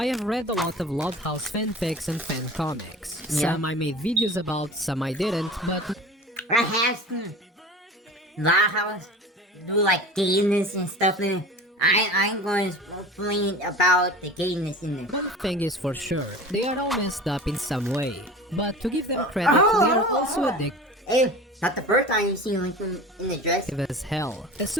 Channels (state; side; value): normal; both; correlation 0.37